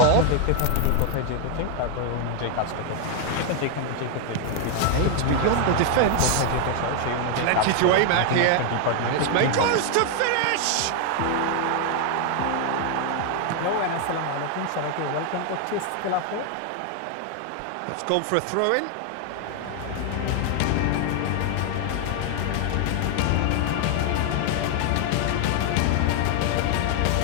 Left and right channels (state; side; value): different; both; correlation 0.00